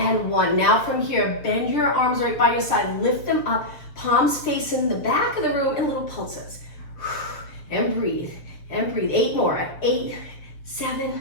1. Now from here, bend your arms right by your side. Lift them up. Palms facing the back of the room in little pulses. And breathe, and breathe. 8 more. 8, 7,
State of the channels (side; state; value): right; late; 6.7 ms